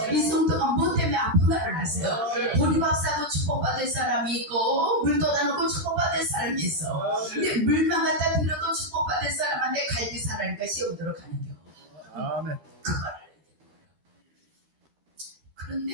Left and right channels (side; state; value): left; late; 13 ms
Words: 이 성도가 뭐 때문에 아픈가를 아세요. 보리밥사도 축복받을 사람이 있고 물 떠다놓고 축복받을 사람이 있어. 근데 물만 갖다 들여도 축복받을 사람한테 갈비 사라니까 시험 들어가는 겨. 아멘.